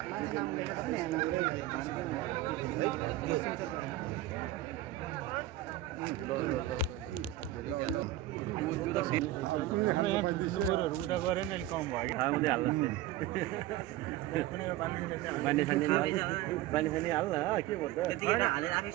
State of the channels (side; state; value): left; quieter; 14.3 dB